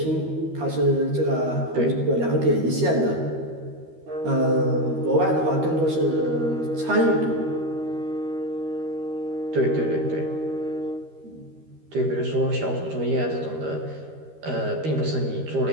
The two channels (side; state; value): left; late; 13 ms